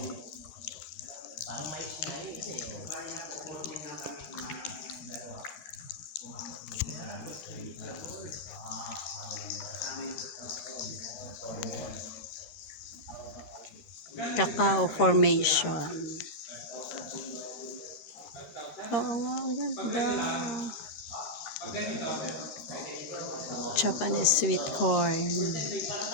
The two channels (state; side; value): late; right; 13 ms